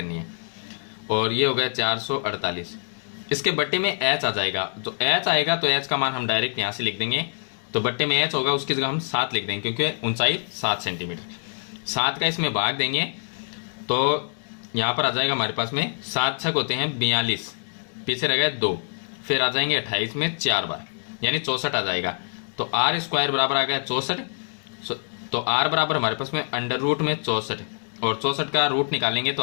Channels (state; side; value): silent; right; 59 dB below the other